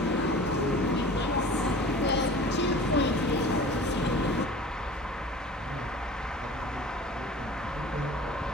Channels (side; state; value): both; normal; correlation 0.42